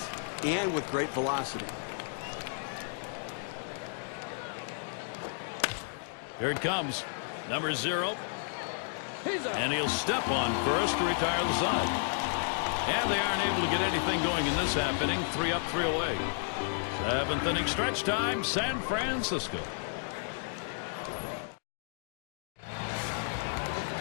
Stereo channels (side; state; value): right; silent; digital silence